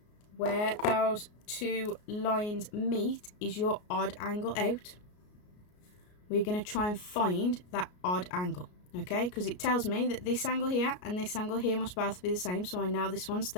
where those two lines meet is your odd angle out. We're going to try and find that odd angle, okay, because it tells me that this angle here and this angle here must both be the same. So I know this one's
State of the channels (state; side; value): late; right; 33 ms